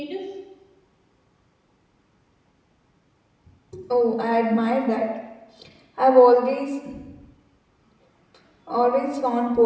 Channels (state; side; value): identical; both; correlation 1.00